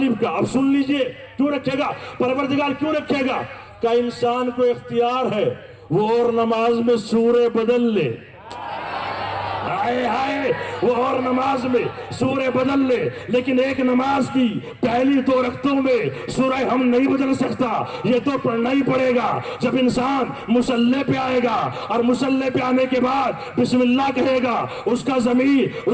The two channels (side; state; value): both; identical; correlation 1.00